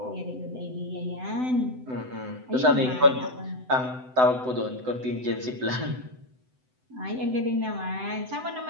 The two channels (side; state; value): left; late; 7.9 ms